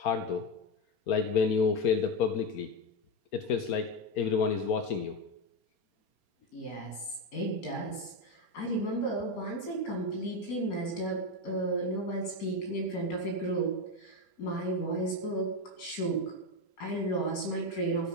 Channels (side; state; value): right; late; 4.3 ms